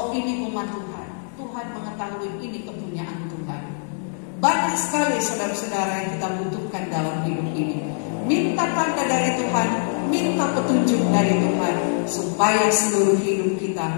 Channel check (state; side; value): silent; right; digital silence